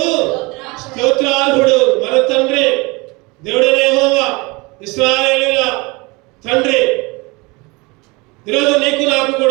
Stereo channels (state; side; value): quieter; left; 25.8 dB